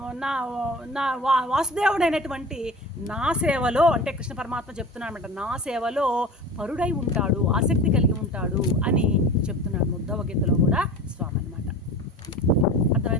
వాసుదేవుడైనటువంటి నా సేవలో, అంటే కృష్ణ పరమాత్మ చెప్తున్నాడు అనమాట, నా సేవలో పరుడై ఉంటాడు, ఆసక్తి కలిగి ఉంటాడు అని చెప్తున్నాడు ఉద్ధవ గీతలో కూడా స్వామి అనమాట.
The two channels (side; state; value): both; normal; correlation 0.36